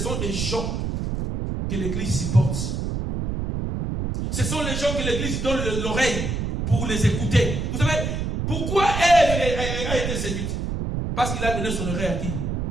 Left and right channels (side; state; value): right; noise; rumble, 2 dB below the sound